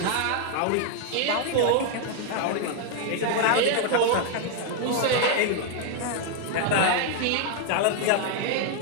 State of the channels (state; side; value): different; both; correlation 0.00